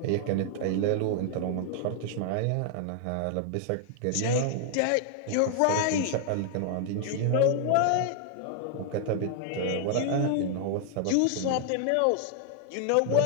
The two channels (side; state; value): both; different; correlation 0.00